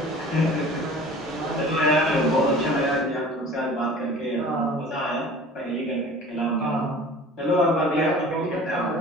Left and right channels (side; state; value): both; normal; correlation 0.43